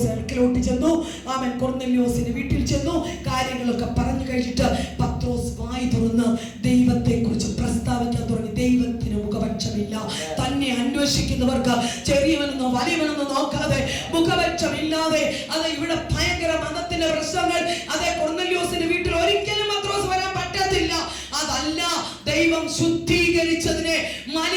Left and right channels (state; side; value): identical; both; correlation 1.00